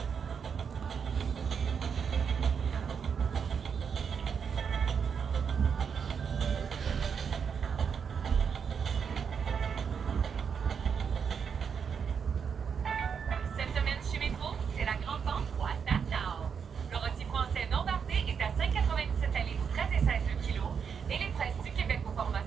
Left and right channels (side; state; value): left; quieter; 6.7 dB